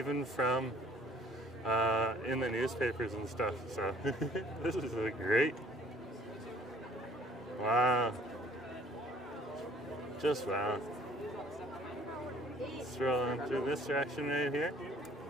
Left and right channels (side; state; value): both; normal; correlation 0.56